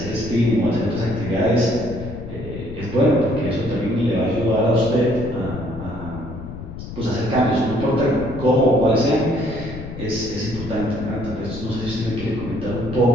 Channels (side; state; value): left; noise; rumble, 10 dB below the sound